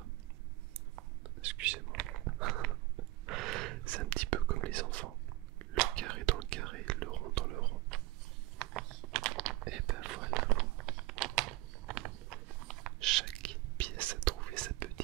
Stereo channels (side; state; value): left; quieter; 19.1 dB